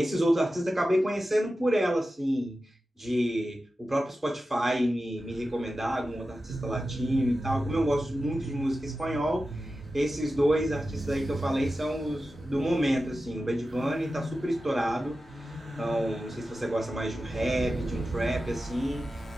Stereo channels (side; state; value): both; normal; correlation 0.93